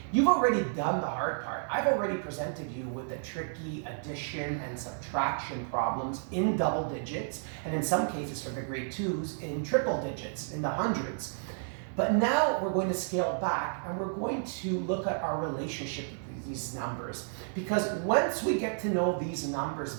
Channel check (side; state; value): left; silent; 56 dB below the other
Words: You've already done the hard part. I've already presented you with the tricky addition and subtraction problems in double digits, and in some cases for the grade 2s in triple digits, in the hundreds. But now we're going to scale back and we're going to look at our relationship with these numbers. Because once we get to know these numbers